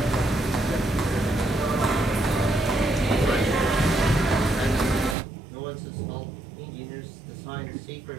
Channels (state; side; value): drops out; left; at 5.2 s